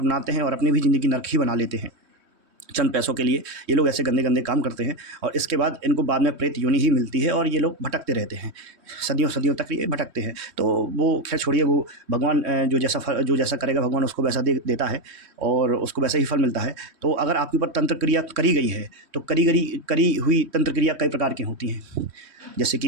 हैं और अपनी भी ज़िंदगी नर्क ही बना लेते हैं। चंद पैसों के लिए ये लोग ऐसे गंदे गंदे काम करते हैं और इसके बाद इनको बाद में प्रेत योनि ही मिलती है और ये लोग भटकते रहते हैं, सदियों सदियों तक ये भटकते हैं। तो वो खैर छोड़िए, वो भगवान जो जैसा करेगा भगवान उसको वैसा देता है और उसको वैसा ही फल मिलता है। तो अगर आपके ऊपर तंत्र क्रिया करी गई है तो करी हुई तंत्र क्रिया कई प्रकार की होती हैं। जैसे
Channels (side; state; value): left; late; 3.1 ms